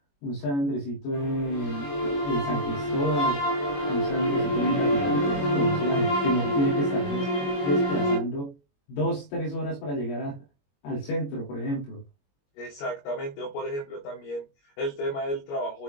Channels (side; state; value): right; late; 21 ms